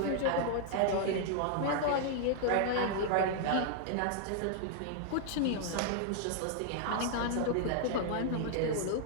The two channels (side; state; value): both; different; correlation -0.01